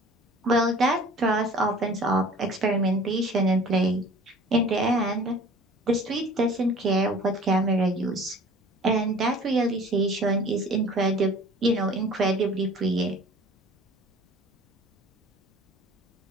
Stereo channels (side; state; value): both; normal; correlation 0.47